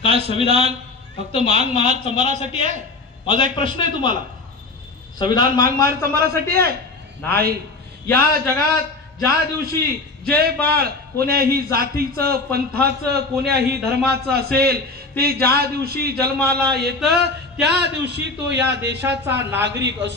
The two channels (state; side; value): quieter; right; 3.4 dB